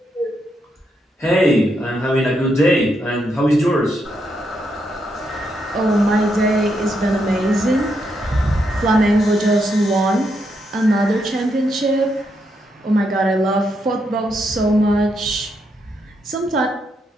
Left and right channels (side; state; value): both; normal; correlation 0.80